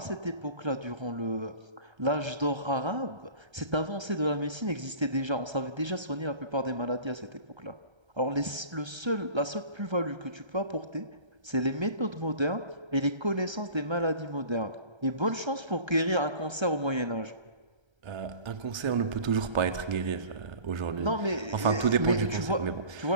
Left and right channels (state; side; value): late; left; 1.3 ms